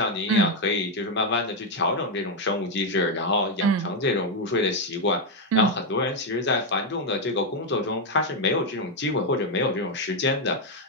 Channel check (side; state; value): both; normal; correlation 0.03